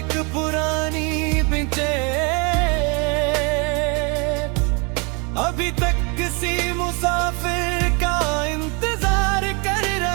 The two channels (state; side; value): quieter; left; 32.2 dB